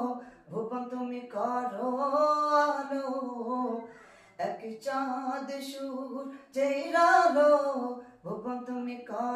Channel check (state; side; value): identical; both; correlation 1.00